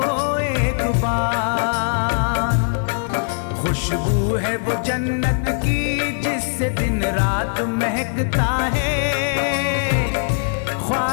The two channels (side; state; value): right; silent; digital silence